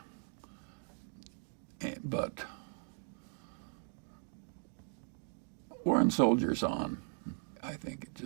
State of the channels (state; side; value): silent; left; 52 dB below the other